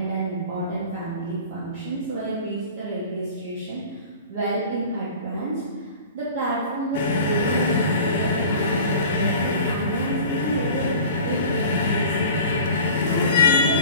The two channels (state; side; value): inverted; both; correlation -0.41